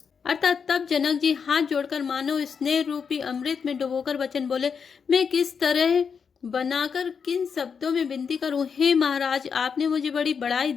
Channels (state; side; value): quieter; right; 6.3 dB